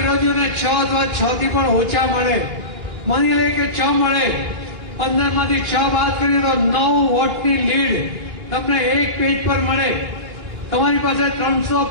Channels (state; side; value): late; left; 2.9 ms